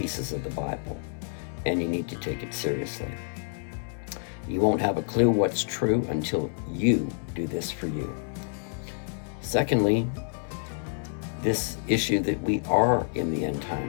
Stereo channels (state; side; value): silent; right; digital silence